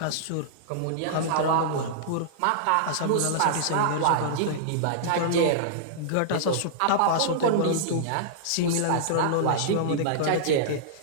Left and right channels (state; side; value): different; both; correlation -0.02